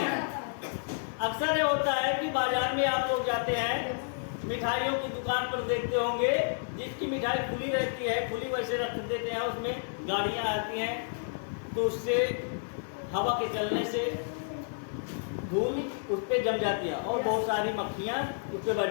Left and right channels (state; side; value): silent; right; digital silence